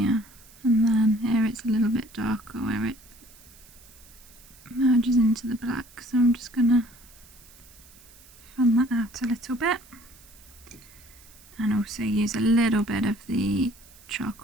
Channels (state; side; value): noise; right; hiss, 24 dB below the sound